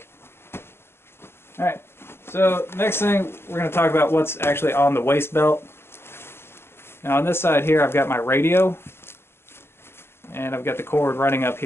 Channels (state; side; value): late; right; 0.12 ms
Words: All right, so next thing we're going to talk about what's actually on the waist belt. Now on this side here I've got my radio. And I've got the cord running up